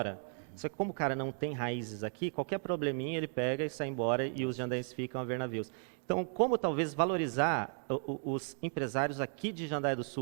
só que como o cara não tem raízes aqui, qualquer probleminha ele pega e sai embora e os jandaienses ficam a ver navios. Então, como talvez valorizar os empresários aqui de Jandaia do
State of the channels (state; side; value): silent; left; 54 dB below the other